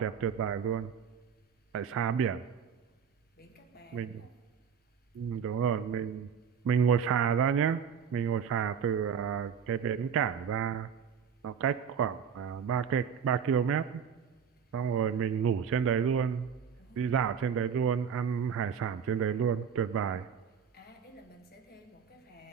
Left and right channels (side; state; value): left; quieter; 7.3 dB